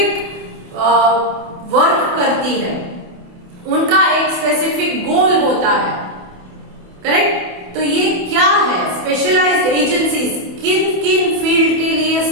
वर्क करती है. उनका एक स्पेसिफिक गोल होता है, करेक्ट. तो ये क्या है स्पेशलाइज्ड एजेंसीज, किन किन फील्ड के लिए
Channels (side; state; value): left; late; 28 ms